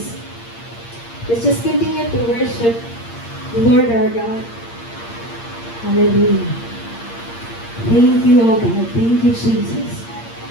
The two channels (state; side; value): late; right; 8.6 ms